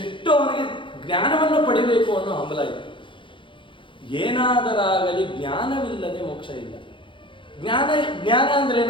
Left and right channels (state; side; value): late; right; 0.24 ms